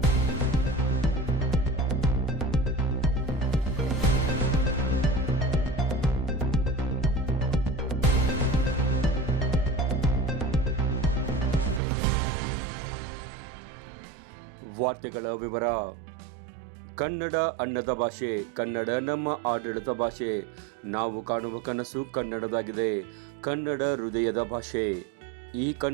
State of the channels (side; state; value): left; drops out; at 11.8 s